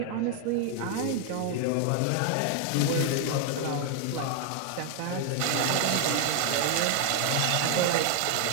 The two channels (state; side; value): different; both; correlation 0.00